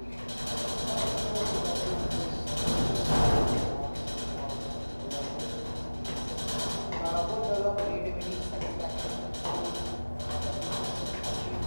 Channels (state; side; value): inverted; both; correlation -1.00